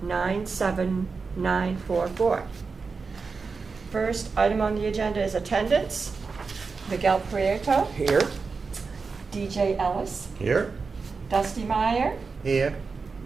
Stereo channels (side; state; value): left; quieter; 4.7 dB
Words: First item on the agenda is attendance. Miguel Prieto, Here. DJ Ellis, Here. Dusty Meyer, Here.